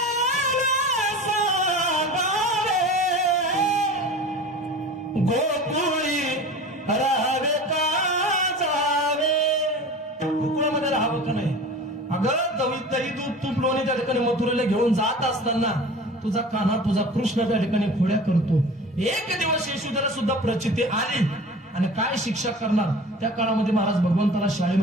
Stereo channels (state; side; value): normal; both; correlation 0.38